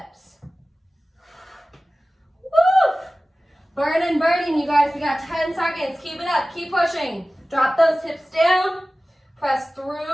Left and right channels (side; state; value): both; normal; correlation 0.97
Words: Woo! Burning, burning, you guys. We got 10 seconds. Keep it up. Keep pushing. Drop those hips down. Press